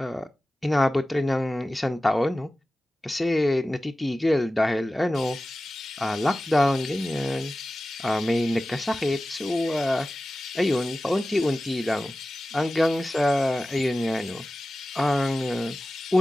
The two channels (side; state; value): both; normal; correlation 0.96